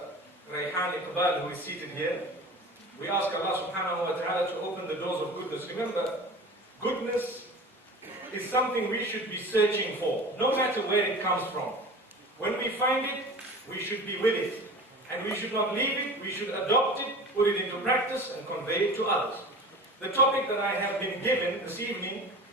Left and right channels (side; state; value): both; normal; correlation 0.36